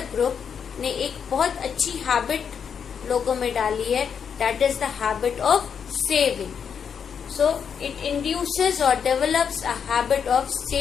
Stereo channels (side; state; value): right; quieter; 7.1 dB